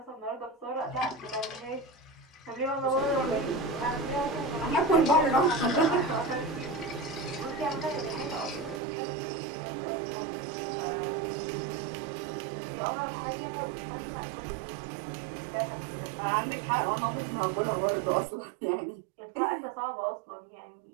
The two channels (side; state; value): left; drops out; at 8.8 s